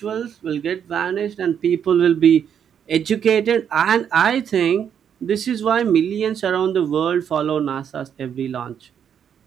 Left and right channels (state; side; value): quieter; left; 8.4 dB